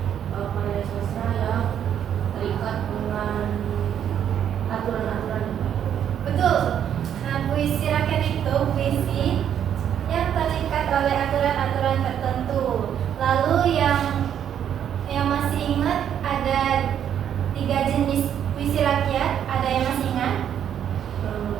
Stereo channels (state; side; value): quieter; left; 9.4 dB